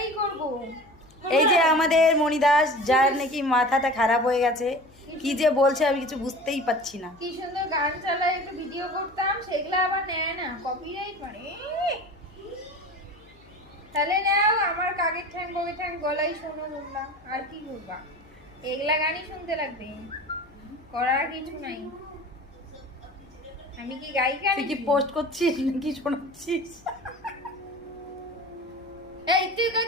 করবো। এই যে আমাদের মণিদাস, যার নাকি মাথাটা খারাপ হয়ে গেছে, কি যে বলছে আমি কিছু বুঝতেই পাচ্ছি না। কি সুন্দর গান চালায়, একটু ভিডিও করতাম, সেগুলো আবার নেয় না, কপিরাইট মানে। তাহলে নাও আমার কাকের ঠ্যাং বগের ঠ্যাং গলাই শোনো বললাম, আর কি করবা, এগুলা গানই শুনতে লাগবে, করার কিছু নাই। আমি কি গায়িকা তুই কি নাকি? পোস্ট করছিস নাকি শোনাচ্ছিস? এই তুই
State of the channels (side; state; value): left; noise; hum, 27 dB below the sound